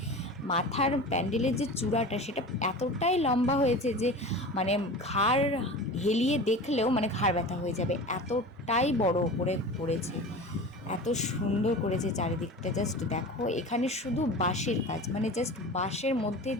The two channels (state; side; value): normal; both; correlation 0.33